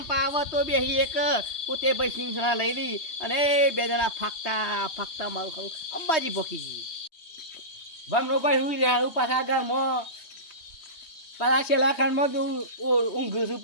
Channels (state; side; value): late; right; 3.1 ms